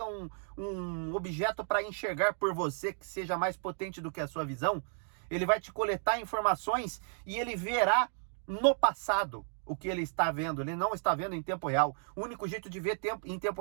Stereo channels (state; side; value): silent; left; 56 dB below the other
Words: um objeto para enxergar por você que seja mais potente do que a sua visão, ele vai te coletar informações e ele verá no passado o que ele está vendo. Ele não está vendo em tempo real. O único jeito de ver em tempo